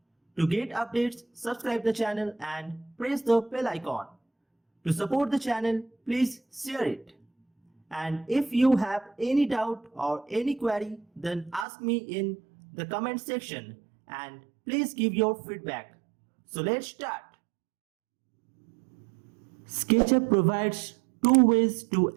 To get updates, subscribe the channel and press the bell icon. To support the channel, please share it. And if you have any doubt or any query, then ask me in the comment section and please give your feedback. So let's start. SketchUp provides two ways to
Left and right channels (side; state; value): left; drops out; at 11.7 s